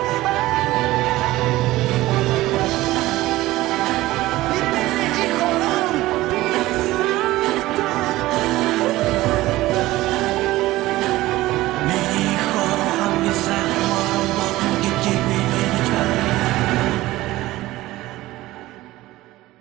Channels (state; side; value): quieter; left; 17.4 dB